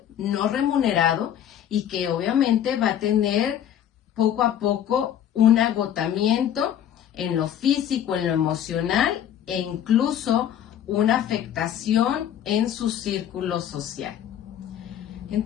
no remunerado, y que obviamente va a tener poco a poco un agotamiento en lo físico, en lo emocional e incluso una afectación en su círculo social.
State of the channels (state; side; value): quieter; right; 10.2 dB